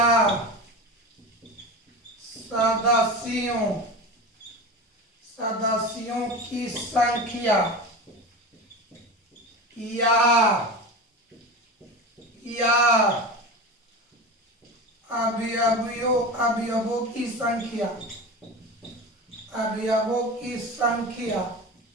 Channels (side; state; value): both; normal; correlation 0.28